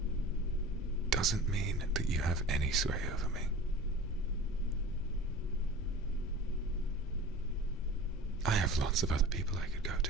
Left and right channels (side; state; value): both; normal; correlation 0.37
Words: doesn't mean that you have any sway over me. I have lots of other people I could go to,